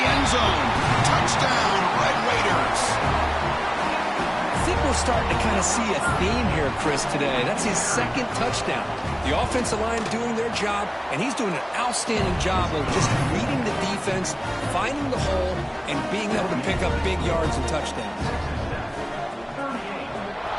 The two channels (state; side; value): identical; both; correlation 1.00